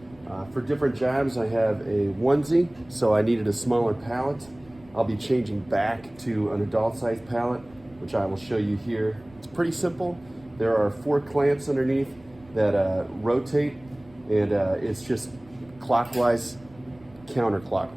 for different jobs I have a onesie, so I needed a smaller pallet. I'll be changing back to an adult size pallet, which I will show you here. It's pretty simple. There are 4 clamps underneath that rotate, and it's just clockwise,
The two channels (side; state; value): right; noise; rumble, 26 dB below the sound